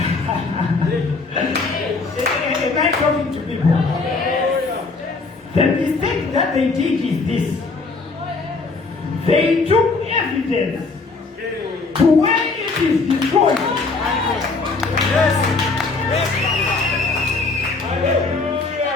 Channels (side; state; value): right; quieter; 4.0 dB